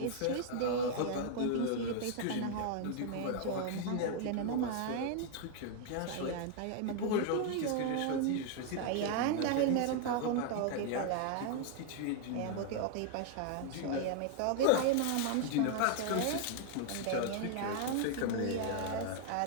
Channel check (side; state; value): both; different; correlation 0.00